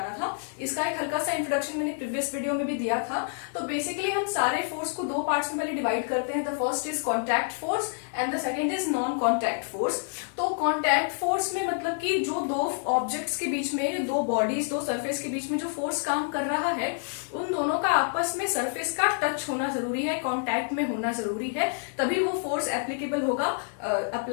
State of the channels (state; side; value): silent; right; digital silence